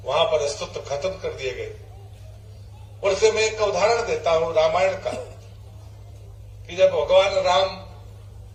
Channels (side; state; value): both; identical; correlation 1.00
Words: वहां पर अस्तित्व खत्म कर दिए गए। और इससे मैं एक उदाहरण देता हूं रामायण का, कि जब भगवान राम